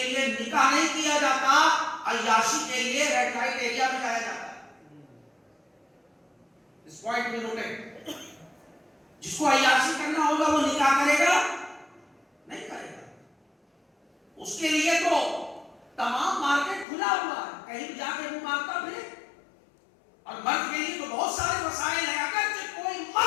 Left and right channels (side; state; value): right; drops out; at 16.9 s